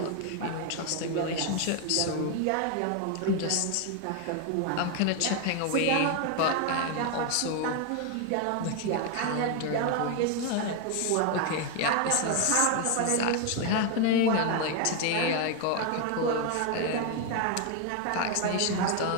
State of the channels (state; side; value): different; both; correlation 0.01